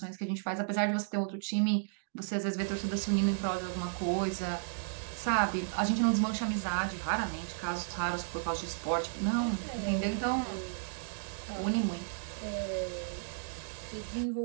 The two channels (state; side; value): silent; left; digital silence